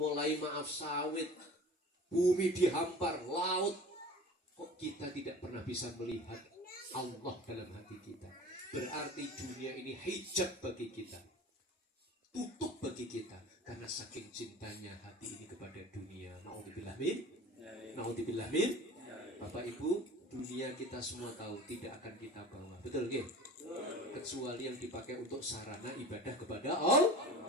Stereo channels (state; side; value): normal; both; correlation 0.39